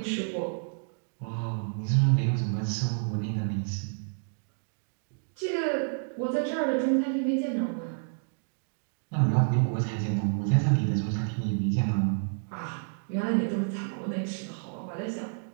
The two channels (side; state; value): left; silent; digital silence